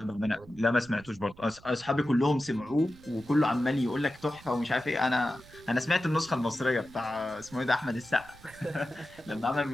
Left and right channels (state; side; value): noise; right; rumble, 22 dB below the sound